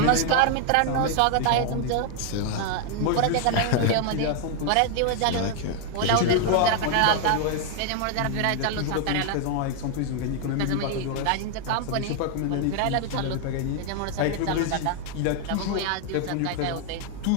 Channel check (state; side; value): different; both; correlation 0.00